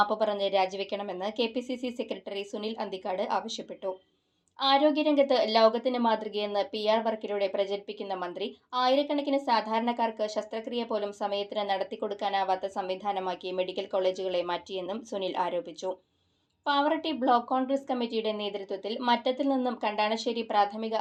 പറഞ്ഞ് രാജിവെക്കണമെന്ന് കെപിസിസി സെക്രട്ടറി സുനിൽ അന്തിക്കാട് ആവശ്യപ്പെട്ടു. ആരോഗ്യരംഗത്ത് ലോകത്തിന് മാതൃകയെന്ന് PR വർക്കിലൂടെ പ്രചരിപ്പിക്കുന്ന മന്ത്രി ആയിരക്കണക്കിന് സാധാരണക്കാർക്ക് ശസ്ത്രക്രിയ പോലും സമയത്തിന് നടത്തിക്കൊടുക്കാനാവാത്ത സംവിധാനമാക്കി മെഡിക്കൽ കോളേജുകളെ മാറ്റിയെന്നും സുനിൽ ആരോപിച്ചു. പാവറട്ടി ബ്ലോക്ക് കോൺഗ്രസ് കമ്മിറ്റിയുടെ നേതൃത്വത്തിൽ മറ്റത്തിൽ നിന്നും കണ്ടാണശ്ശേരി പ്രാഥമിക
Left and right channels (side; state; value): both; identical; correlation 1.00